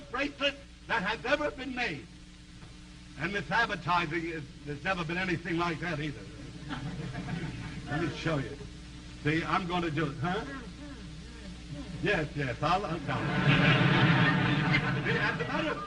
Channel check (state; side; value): identical; both; correlation 1.00